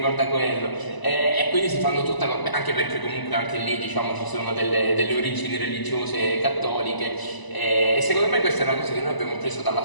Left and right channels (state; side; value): late; right; 1.0 ms